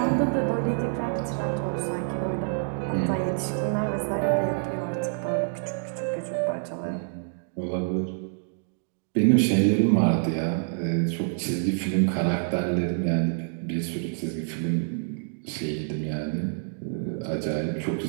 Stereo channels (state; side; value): silent; left; digital silence